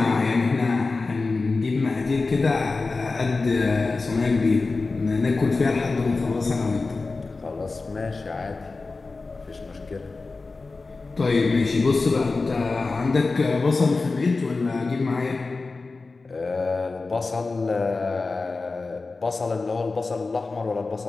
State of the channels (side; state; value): right; quieter; 3.8 dB